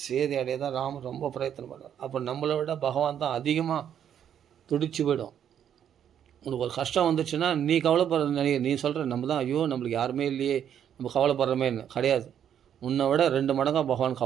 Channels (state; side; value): quieter; left; 9.3 dB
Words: சீதை அடைய தான் ராமர் ரொம்ப பிரயத்தனம் பண்ணார். அப்போ நம்மளை விட பகவான் தான் அதிகமாக துடிச்சு போயிடும். உனக்கு ஒரு கஷ்டம் வந்துச்சுன்னா நீ கவலைப்படுற, நீ சொல்கிற நம்ம தான் ஐயோ நம்மளுக்கு யாருமே இல்லையே, நம்ம கவலைப்படுறமேன்னு கிடையாது. உன்னை விட 2 மடங்காக பகவான்